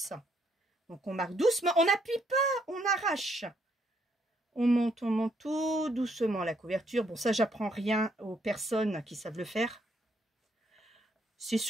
Donc on marque doucement, on n'appuie pas, on arrache. On monte tout doucement la couverture. Bon, ça, j'apprends rien aux personnes qui savent le faire. C'est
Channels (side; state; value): both; normal; correlation 0.72